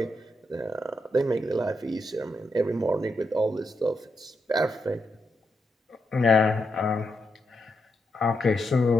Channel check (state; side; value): normal; both; correlation 0.83